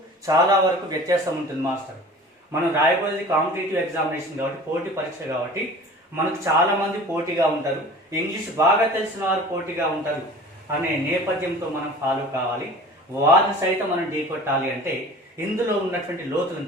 చాలా వరకు వ్యత్యాసం ఉంటుంది మాస్టర్. మనం రాయబోయేది కాంపిటేటివ్ ఎగ్జామినేషన్ కాబట్టి, పోటీ పరీక్ష కాబట్టి మనకు చాలా మంది పోటీగా ఉంటారు, ఇంగ్లీష్ బాగా తెలిసిన వారు పోటీగా ఉంటారు అనే నేపథ్యంతో మనం ఫాలో కావాలి. వారిని సైతం మనం ఢీకొట్టాలి అంటే ఇందులో ఉన్నటువంటి లోతులను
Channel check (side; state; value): both; normal; correlation 0.42